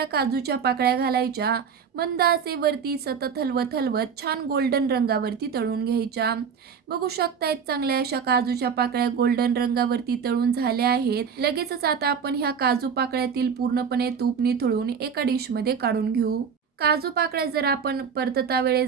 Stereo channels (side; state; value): left; quieter; 6.7 dB